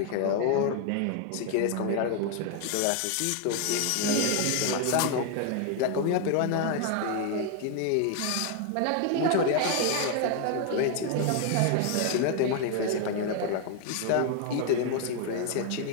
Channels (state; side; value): different; both; correlation 0.00